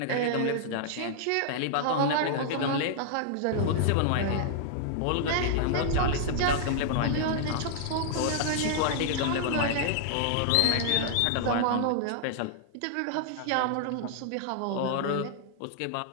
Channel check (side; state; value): both; different; correlation -0.01